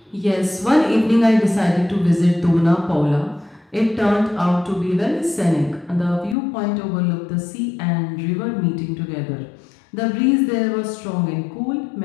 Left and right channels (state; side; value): drops out; right; at 6.4 s